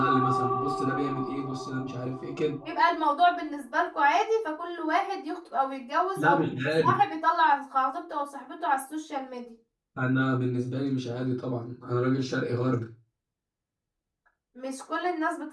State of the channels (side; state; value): both; identical; correlation 1.00